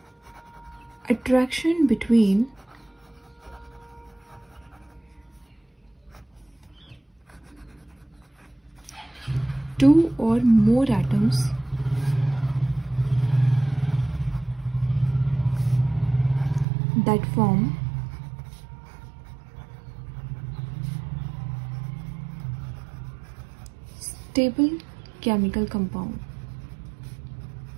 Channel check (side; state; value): left; drops out; at 16.7 s